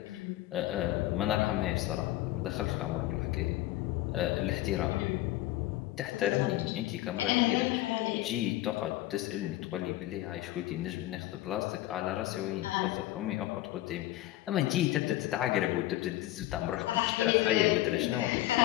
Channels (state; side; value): quieter; right; 16.0 dB